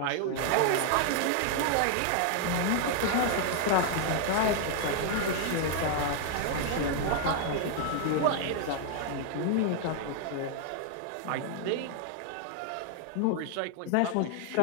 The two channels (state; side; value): different; both; correlation 0.00